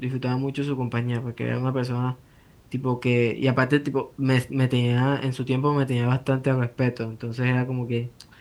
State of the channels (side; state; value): both; identical; correlation 1.00